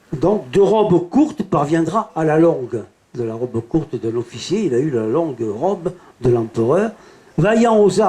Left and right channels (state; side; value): identical; both; correlation 1.00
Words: Donc, de robe courte parviendra à la longue. De la robe courte d'un officier, il a eu la longue robe de l'empereur. Vaillant aux